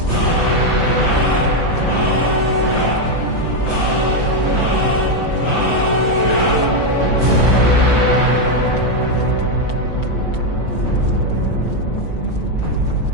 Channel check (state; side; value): late; right; 5.9 ms